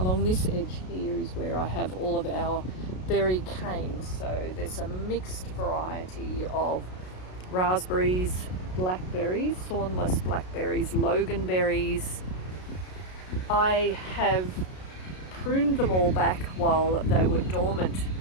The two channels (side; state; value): right; late; 33 ms